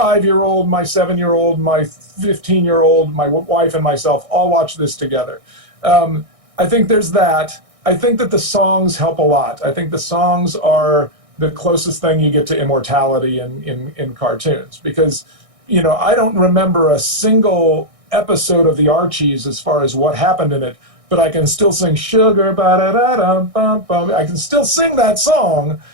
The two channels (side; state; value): left; late; 1.6 ms